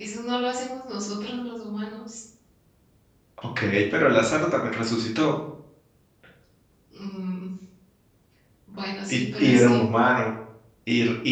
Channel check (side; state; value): both; identical; correlation 1.00